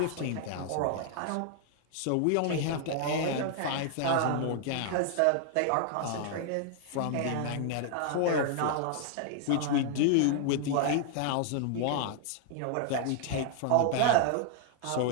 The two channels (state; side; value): different; both; correlation 0.00